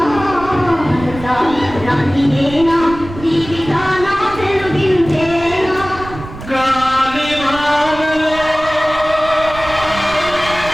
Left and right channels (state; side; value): noise; right; rumble, 13 dB below the sound